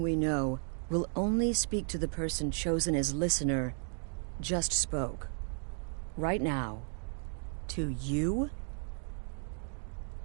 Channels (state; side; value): silent; left; 55 dB below the other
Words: we know, will only speak to the person chosen as listener, just spoke. Right now. To you?